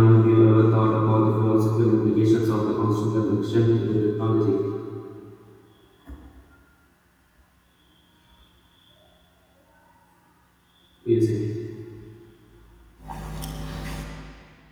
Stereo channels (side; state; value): both; identical; correlation 1.00